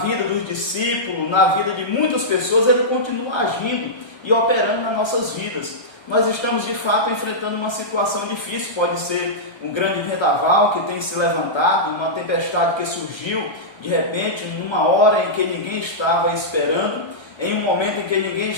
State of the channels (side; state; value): right; late; 1.3 ms